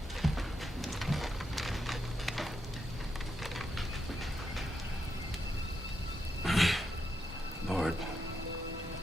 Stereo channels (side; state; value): both; normal; correlation 0.83